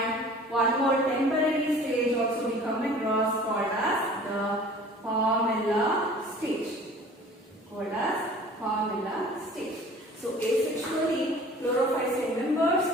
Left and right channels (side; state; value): both; normal; correlation 0.46